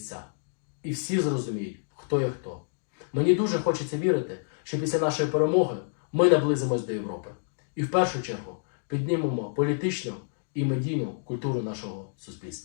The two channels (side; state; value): right; silent; digital silence